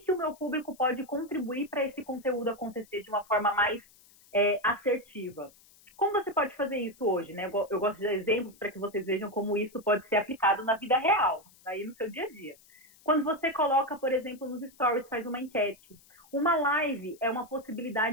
o meu público pode contribuir para esse conteúdo acontecer de uma forma mais assertiva. Como você pode fazer isso hoje, né? Eu gosto de dar exemplos para que vocês vejam como isso pode ser aplicado na vida real, aí no seu dia a dia. Quando você coloca, por exemplo, nos stories, faz uma enquete. Uma live é uma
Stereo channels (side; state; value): left; noise; hiss, 27 dB below the sound